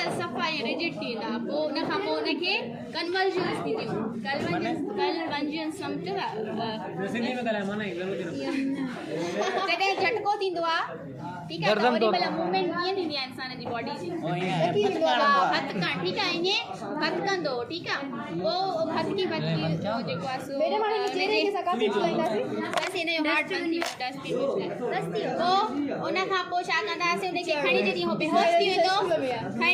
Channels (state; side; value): identical; both; correlation 1.00